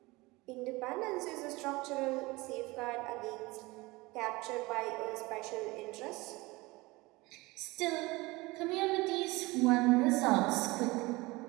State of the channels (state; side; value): quieter; left; 22.3 dB